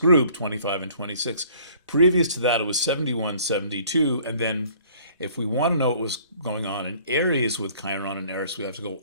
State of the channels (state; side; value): inverted; both; correlation -0.55